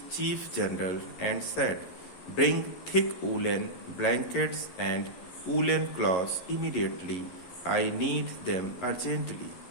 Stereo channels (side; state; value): right; late; 11 ms